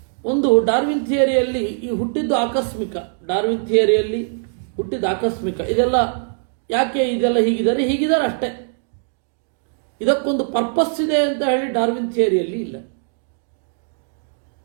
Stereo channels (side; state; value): left; silent; digital silence